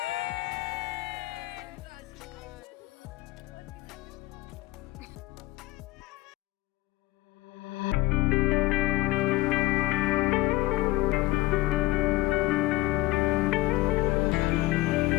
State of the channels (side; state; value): right; quieter; 18.9 dB